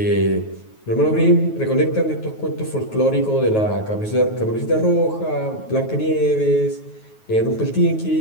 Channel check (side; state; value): right; late; 9.3 ms